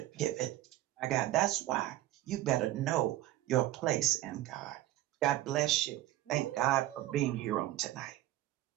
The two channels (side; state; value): left; quieter; 14.9 dB